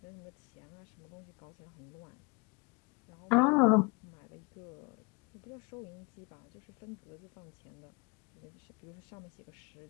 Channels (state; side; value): quieter; right; 29.8 dB